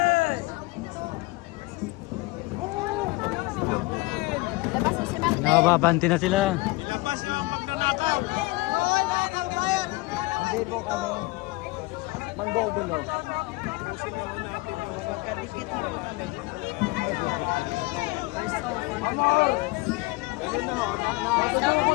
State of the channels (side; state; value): right; quieter; 22.8 dB